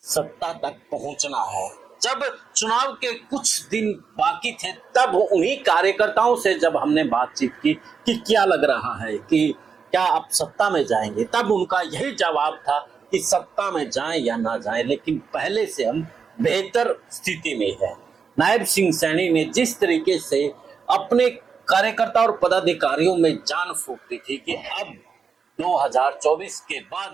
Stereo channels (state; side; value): quieter; left; 5.9 dB